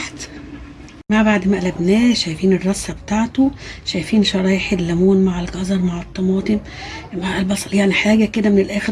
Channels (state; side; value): identical; both; correlation 1.00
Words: بعد ما قلبناه شايفين الرصه بتاعته. شايفين شرايح الليمون مع الجزر مع الطماطم مع البصل يعني حاجه كده من